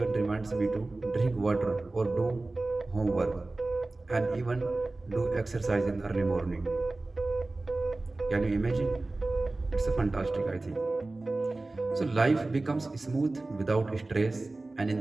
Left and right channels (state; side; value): quieter; left; 3.1 dB